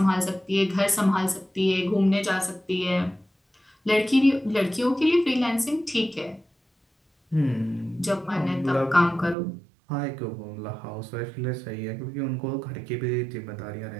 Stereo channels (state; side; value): drops out; left; at 9.3 s